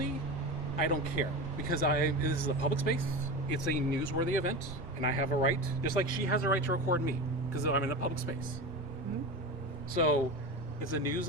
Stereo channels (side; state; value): both; normal; correlation 0.25